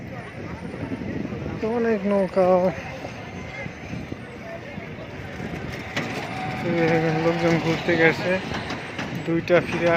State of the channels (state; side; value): identical; both; correlation 1.00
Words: তো অনেক নৌকা, লোকজন ঘুরতে গেছে। দুইটা ফিরে